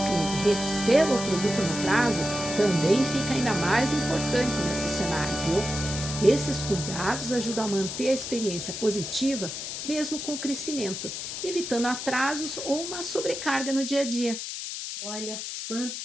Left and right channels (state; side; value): noise; left; hiss, 6 dB below the sound